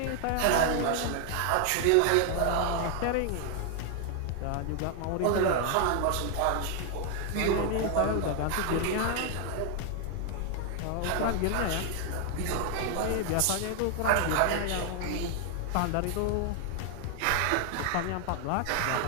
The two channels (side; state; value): both; different; correlation 0.00